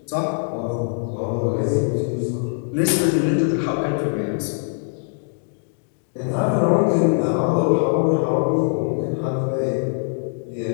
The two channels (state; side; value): silent; right; digital silence